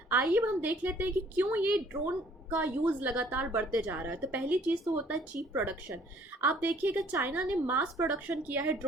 आइए हम देख लेते हैं कि क्यों ये ड्रोन का यूज़ लगातार बढ़ते जा रहा है। तो पहली चीज़ तो होता है चीप प्रोडक्शन। आप देखिएगा चाइना ने मास प्रोडक्शन किया है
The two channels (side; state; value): both; normal; correlation 0.58